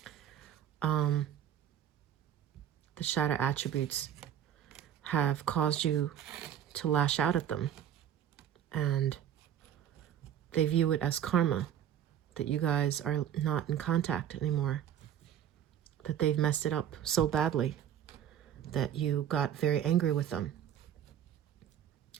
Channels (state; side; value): quieter; left; 10.1 dB